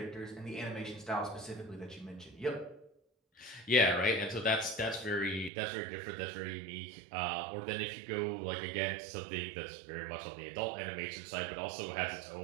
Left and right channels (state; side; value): drops out; left; at 5.5 s